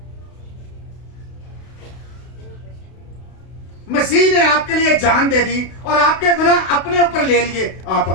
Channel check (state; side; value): late; right; 32 ms